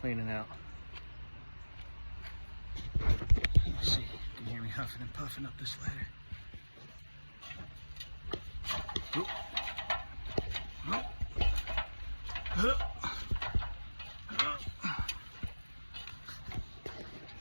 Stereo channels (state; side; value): inverted; both; correlation -1.00